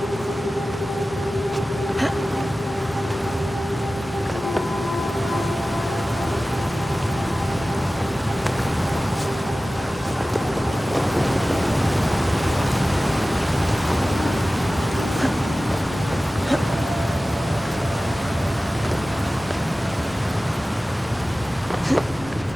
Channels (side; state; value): both; normal; correlation 0.96